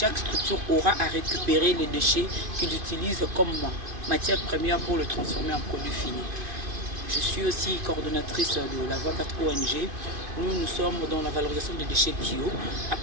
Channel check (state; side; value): late; left; 2.5 ms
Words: structure aura à récupérer les déchets qu'ils utilisent comme matière première pour le transformer en produit fini. Je suis aussi coordonnatrice de la Voie Verte ONG. Nous sommes dans la valorisation des déchets bio. À